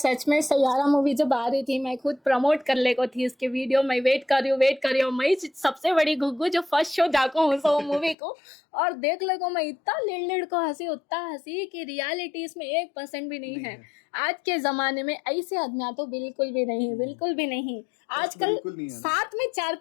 में सैयारा मूवी जब आ रही थी मैं खुद प्रमोट कर ले को थी इसके वीडियो, मैं वेट कर रही हूँ मैं सबसे बड़ी घुग्गू जो फर्स्ट शो जाको हूँ सो मूवी को, और देख ले को मैं इतना लिड़ को हंसी उतना हंसी कि रियलिटी इसमें 1% भी नहीं है। आज के जमाने में ऐसे आदमियां तो बिल्कुल भी नहीं। आजकल साथ में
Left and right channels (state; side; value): drops out; right; at 8.2 s